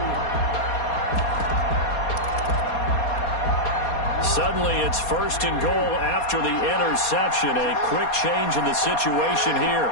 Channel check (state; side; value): late; right; 4.2 ms